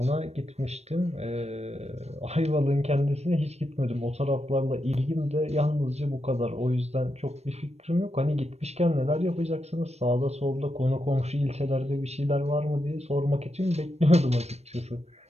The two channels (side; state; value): left; late; 0.31 ms